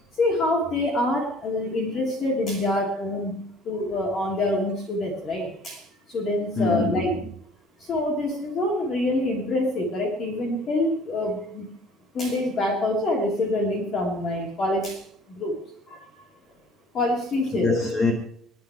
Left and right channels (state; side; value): normal; both; correlation 0.52